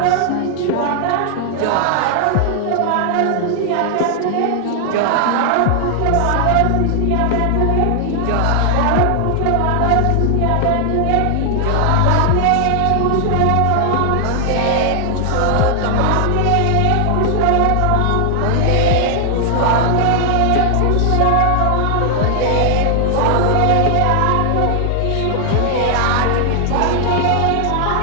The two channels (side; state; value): both; different; correlation 0.00